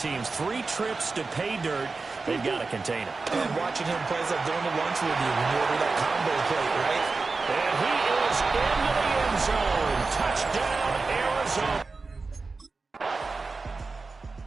3 trips to pay dirt. They've got to contain him. And watching him play is like going to lunch with you when you order that combo plate, right? And he is into the end zone. Touchdown, Arizona.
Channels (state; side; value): quieter; left; 4.0 dB